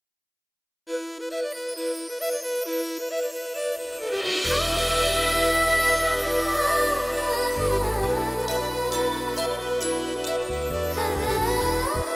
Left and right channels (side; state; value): both; identical; correlation 1.00